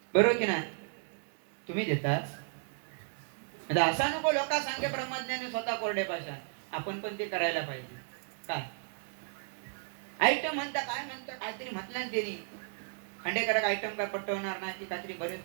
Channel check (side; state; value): left; silent; 55 dB below the other